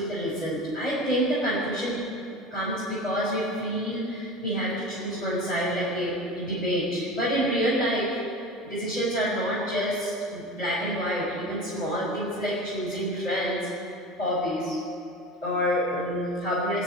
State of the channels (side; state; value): both; normal; correlation 0.32